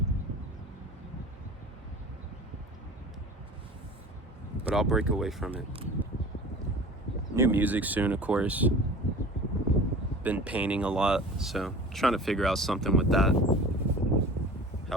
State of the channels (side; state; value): both; normal; correlation 0.40